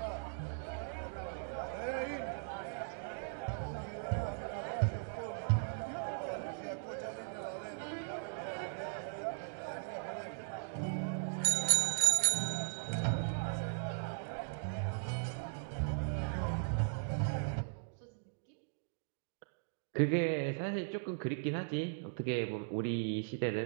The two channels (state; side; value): silent; left; digital silence